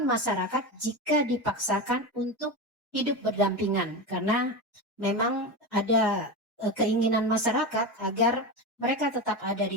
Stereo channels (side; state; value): both; normal; correlation 0.20